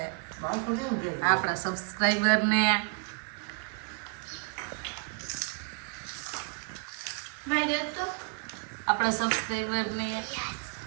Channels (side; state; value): left; quieter; 33.8 dB